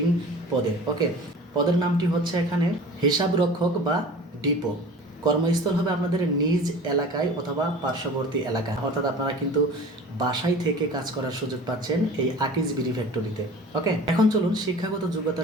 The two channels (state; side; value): normal; both; correlation 0.41